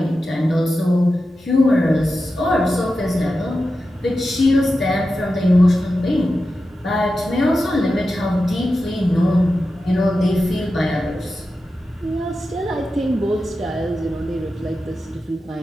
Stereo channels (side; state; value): both; normal; correlation 0.91